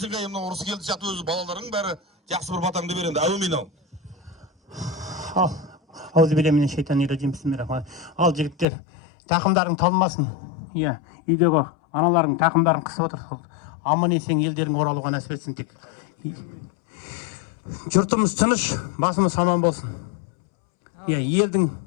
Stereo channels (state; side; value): drops out; right; at 8.7 s